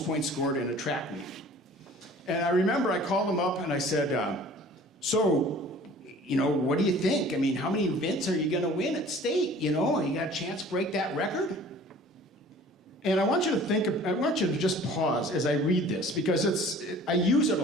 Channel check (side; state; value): both; normal; correlation 0.48